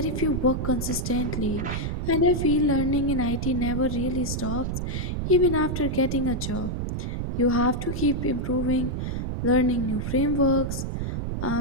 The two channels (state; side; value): noise; right; rumble, 3 dB below the sound